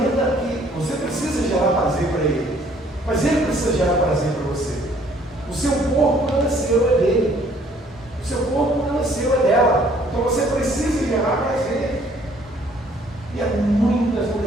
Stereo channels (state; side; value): normal; both; correlation 0.61